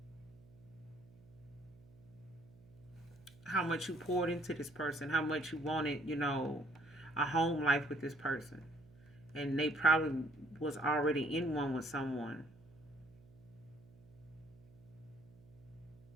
how much you poured into this person, how much you wanted, a home life with this person. And they probably was already in one with someone.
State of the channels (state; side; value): noise; right; hum, 24 dB below the sound